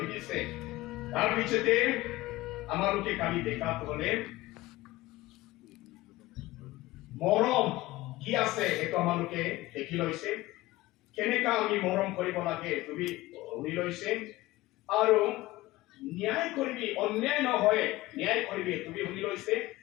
দিছে তাৰ পিছতে আমালোকে কালি দেখাটো হলে মৰম কি আছে সেইটো আমালোকে দেখি লৈছে কেনেকা আমি মৰম কৰিব লাগে তুমি শুনি লৈছে আৰু ন্যায় কৰিবি অন্যায় নহয় ন্যায় কৰিবি তুমি শুনি লৈছে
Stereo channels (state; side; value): quieter; right; 18.4 dB